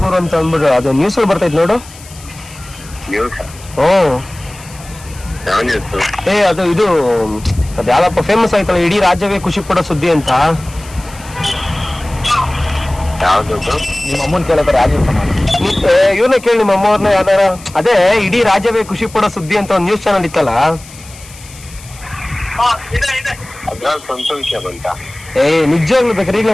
ಅಂತ ಅಂದ್ಬಿಟ್ಟು ಅದು ನ್ಯೂಸ್ ಬರ್ತೈತೆ ನೋಡು. ಅದು ಇದು ಅದ್ ಯಾವ್ದಪ್ಪ ಫೇಮಸ್ ಆಯ್ತಲ್ಲ, ಇಡೀ ರಾಜ್ಯವೇ ಖುಷಿ ಪಡೋ ಸುದ್ದಿ ಅಂತ. ನಿಮ್ಮ ಅಮ್ಮನ್ ಕೇಳೋದಾರ ಇವ್ರನ್ನ ಕೇಳಿ, ನಿಮ್ಮ ಅಮ್ಮವ್ರನ್ನ ಯಾವ್ದಾರ. ಅದೇ ಇಡೀ ರಾಜ್ಯವೇ ಖುಷಿ ಪಡೋ ಸುದ್ದಿ ಅಂತ ಒಂದು ನ್ಯೂಸ್ ಚಾನಲ್ ಇತ್ತಲ್ಲ. ನಿಜವಾಗ್ಲು ಬೇಕಾದ್ರೆ ಈಗ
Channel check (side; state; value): left; noise; hiss, 19 dB below the sound